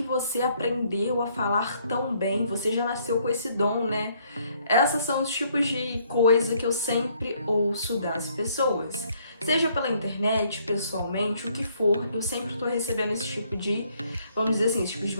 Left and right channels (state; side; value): inverted; both; correlation -0.67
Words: você aprendeu a falar tão bem? Você já nasceu com esse dom, né? Esses são os tipos de coisa que eu sempre ouço das pessoas. Seja pela internet, pessoalmente, o que for, eu sempre tô recebendo esse tipo de, vamos dizer assim, esse tipo de